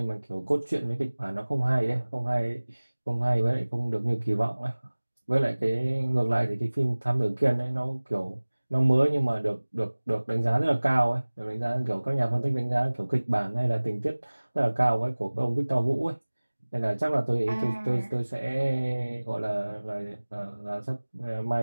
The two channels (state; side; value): inverted; both; correlation -1.00